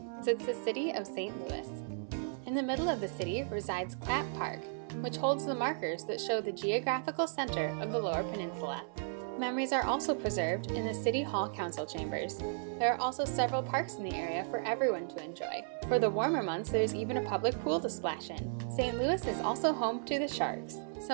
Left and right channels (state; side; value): silent; left; 55 dB below the other